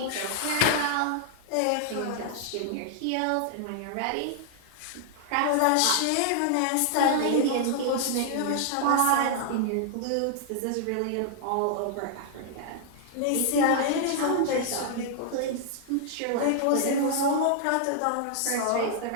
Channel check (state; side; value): different; both; correlation -0.01